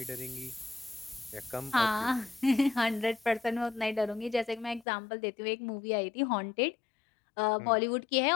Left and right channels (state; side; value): drops out; right; at 4.9 s